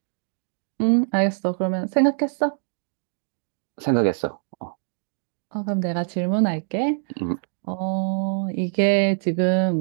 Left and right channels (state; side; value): silent; left; 62 dB below the other